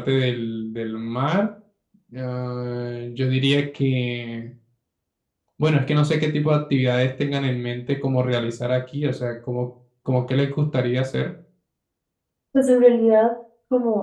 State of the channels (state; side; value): identical; both; correlation 1.00